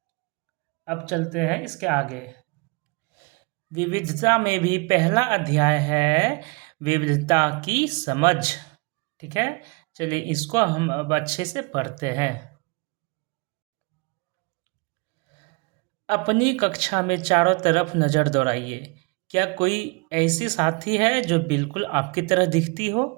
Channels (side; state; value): left; quieter; 29.7 dB